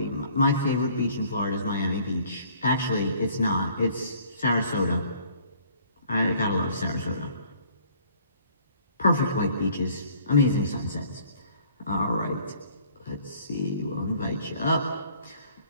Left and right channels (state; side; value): inverted; both; correlation -0.57